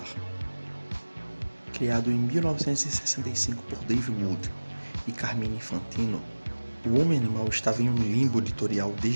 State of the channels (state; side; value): inverted; both; correlation -1.00